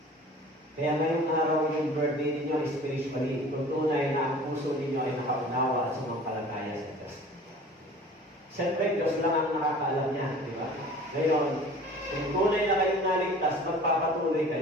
Kaya ngayong araw yung birthday ninyo spiritually, kung tunay na ang puso ninyo ay nakaunawa at sumampalataya sa Diyos. Siyempre, Diyos lang ang nakakaalam niya, di ba? Ngayon, kung tunay na kayong naligtas, magpapatuloy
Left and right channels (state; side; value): normal; both; correlation 0.44